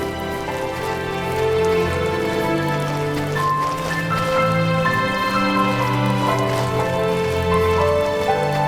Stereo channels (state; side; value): identical; both; correlation 1.00